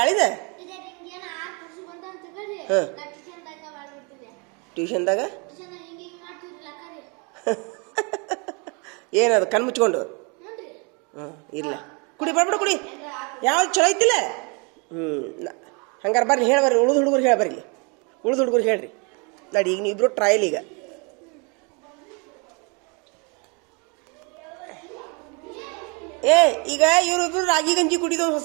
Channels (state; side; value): quieter; left; 32.6 dB